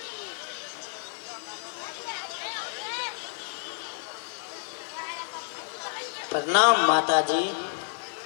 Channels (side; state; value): right; silent; digital silence